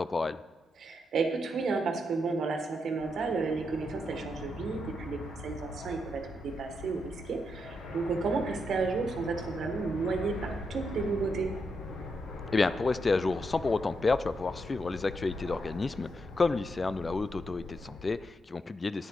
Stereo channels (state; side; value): normal; both; correlation 0.81